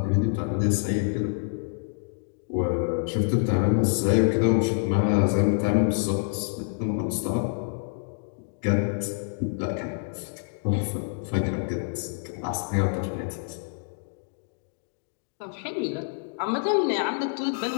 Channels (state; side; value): silent; right; digital silence